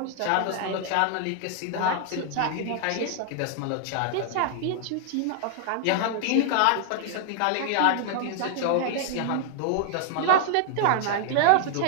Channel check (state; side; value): different; both; correlation 0.00